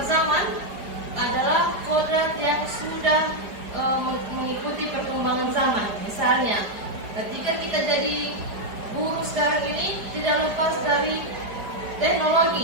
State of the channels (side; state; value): left; late; 4.9 ms